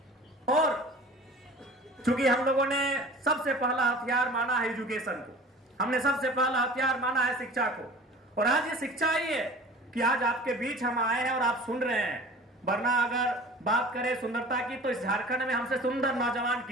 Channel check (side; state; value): both; normal; correlation 0.42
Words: और चूंकि हम लोगों ने सबसे पहला हथियार माना है एजुकेशन को, हमने सबसे पहला हथियार माना है शिक्षा को, और आज ये शिक्षा ही है कि आज आपके बीच हम आए हैं और आप सुन रहे हैं। वरना अगर बात करें सुंदरता की तो इस झारखंड में हमसे सुंदर नौजवान